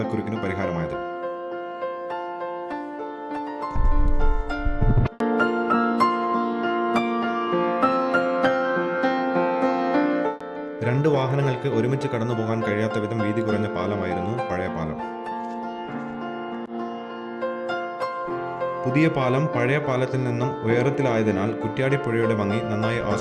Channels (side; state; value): both; identical; correlation 1.00